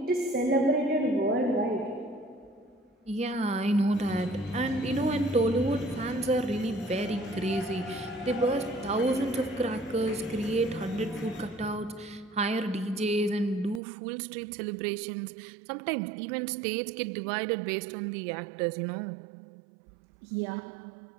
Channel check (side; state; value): left; drops out; at 13.8 s